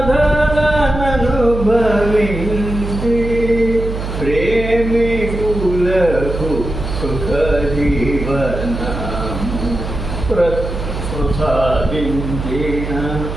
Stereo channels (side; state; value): right; noise; hum, 6 dB below the sound